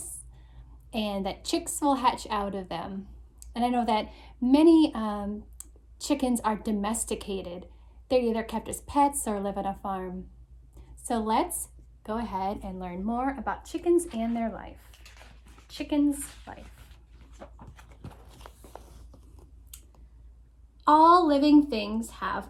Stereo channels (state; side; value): identical; both; correlation 1.00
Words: and that chicks will hatch out of them. And I know that many chickens are domesticated. They're either kept as pets or live on a farm. So let's go ahead and learn more about chickens and their life. Chicken's life. All living things have